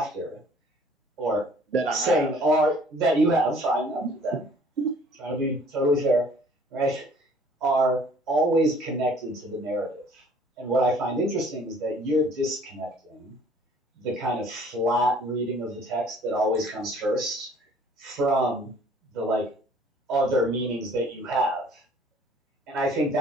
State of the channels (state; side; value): normal; both; correlation 0.55